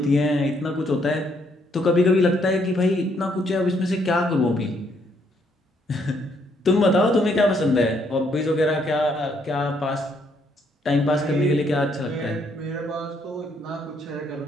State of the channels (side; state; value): both; normal; correlation 0.71